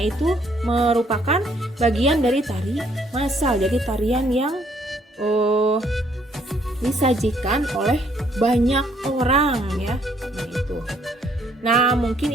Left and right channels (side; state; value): both; normal; correlation 0.67